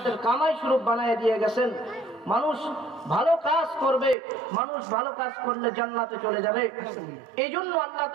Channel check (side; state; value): left; drops out; at 4.2 s